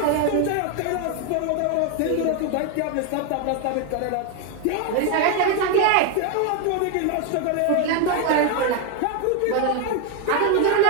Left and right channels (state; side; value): different; both; correlation 0.01